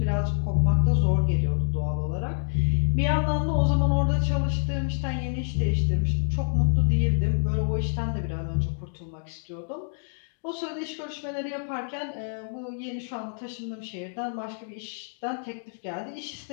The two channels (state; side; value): silent; right; digital silence